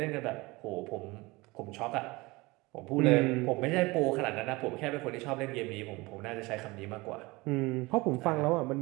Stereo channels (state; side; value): quieter; left; 22.9 dB